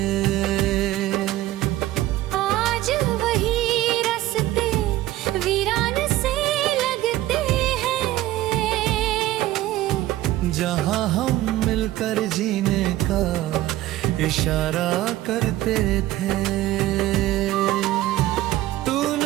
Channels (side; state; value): left; quieter; 15.5 dB